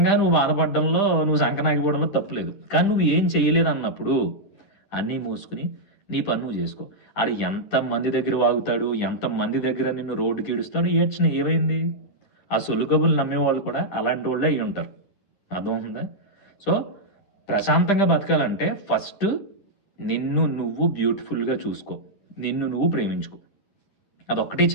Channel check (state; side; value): late; right; 10 ms